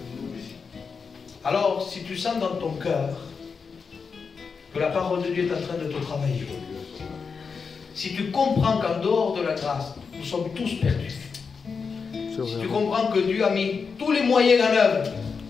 Alors, si tu sens dans ton cœur que la parole de Dieu est en train de te travailler, si tu comprends qu'en dehors de la grâce, nous sommes tous perdus, si tu comprends que Dieu a mis tous les moyens en œuvre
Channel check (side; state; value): right; quieter; 5.4 dB